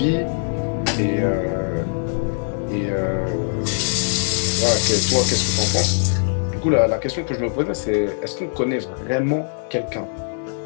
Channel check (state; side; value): silent; right; 65 dB below the other